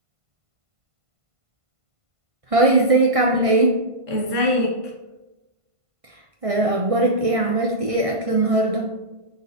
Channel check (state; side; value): late; left; 1.5 ms